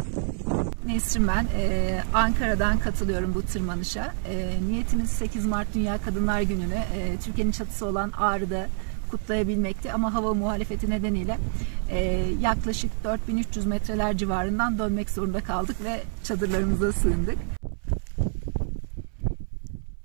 Nesrin ben. Ankara'dan katılıyorum bu tırmanışa. Niyetimiz 8 Mart Dünya Kadınlar Günü'nü Türkiye'nin çatısı olan Ağrı'da kutlayabilmekti. Ama hava muhalefeti nedeniyle yaklaşık 4300 metreler civarından dönmek zorunda kaldık ve çadırlarımıza sığındık.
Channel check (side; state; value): left; silent; 60 dB below the other